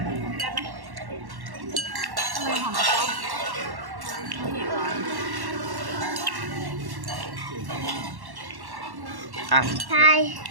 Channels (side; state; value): left; late; 1.1 ms